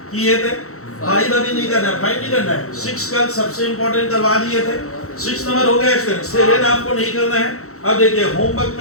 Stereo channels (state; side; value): late; right; 0.64 ms